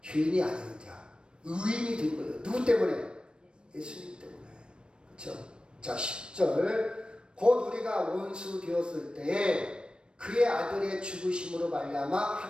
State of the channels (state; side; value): late; left; 0.055 ms